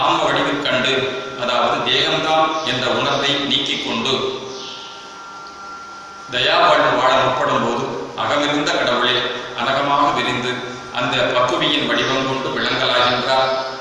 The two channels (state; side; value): identical; both; correlation 1.00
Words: ஆன்ம வடிவில் கண்டு, அதாவது தேகம்தான் என்ற உணர்வை நீக்கிக் கொண்டு தயா வாழ்வு வாழ முற்படும் போது அகமிருந்த கடவுளே அனகமாக விரிந்து அந்த பக்குவியின் வடிவம் கொண்டு விளங்கலாகின்றார்.